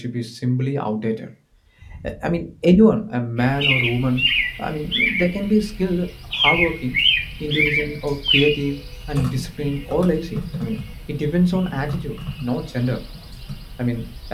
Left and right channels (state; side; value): identical; both; correlation 1.00